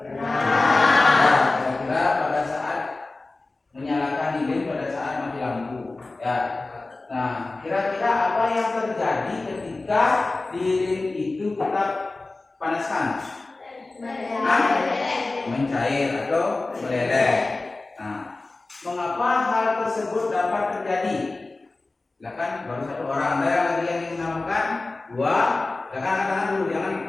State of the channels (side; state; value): right; quieter; 3.3 dB